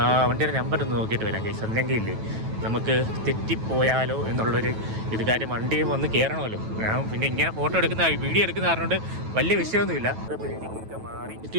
വണ്ടിയുടെ നമ്പർ ഒന്ന് നോക്കിയിട്ട് വരാം കേസ്. അല്ലെങ്കിൽ ഇല്ലേ നമുക്ക് തെറ്റിപ്പോയാലോ എന്നുള്ളൊരു ഇത്. കാര്യം വണ്ടിയും വന്ന് കയറണമല്ലോ. ഞാൻ പിന്നെ ഇങ്ങനെ ഫോട്ടോ എടുക്കുന്ന വീഡിയോ എടുക്കുന്ന കാരണം വലിയ വിഷയമൊന്നുമില്ല. ബിൽഡിങ്ങൊക്കെ മാറി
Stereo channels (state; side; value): late; left; 9.2 ms